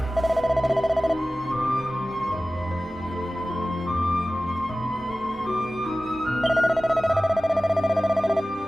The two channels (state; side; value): normal; both; correlation 0.96